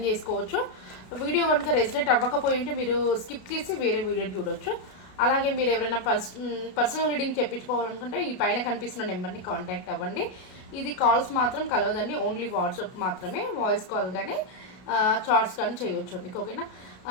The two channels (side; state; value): right; late; 32 ms